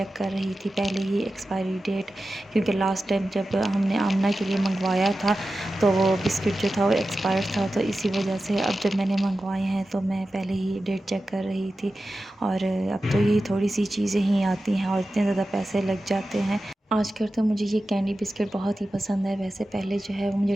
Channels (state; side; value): normal; both; correlation 0.93